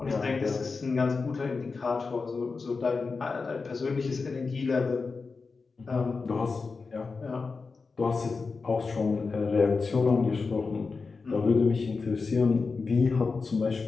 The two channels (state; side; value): quieter; right; 4.5 dB